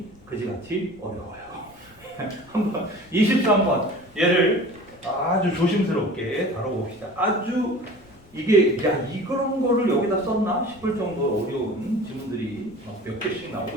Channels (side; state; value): left; noise; rumble, 27 dB below the sound